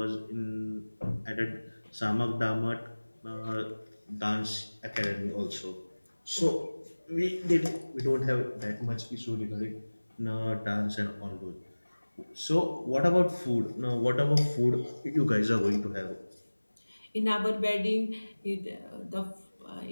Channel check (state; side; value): inverted; both; correlation -1.00